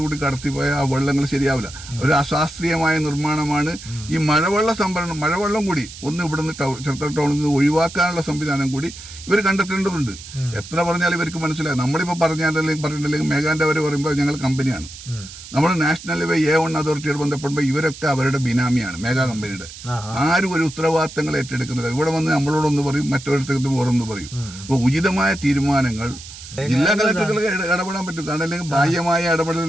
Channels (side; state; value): right; noise; hiss, 15 dB below the sound